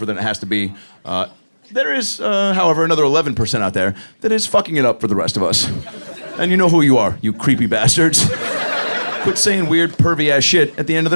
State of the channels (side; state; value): both; inverted; correlation -1.00